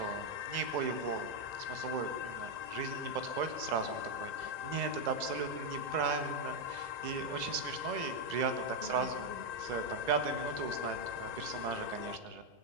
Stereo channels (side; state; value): left; late; 2.0 ms